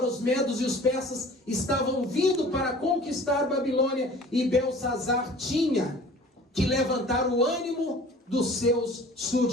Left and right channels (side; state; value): both; normal; correlation 0.46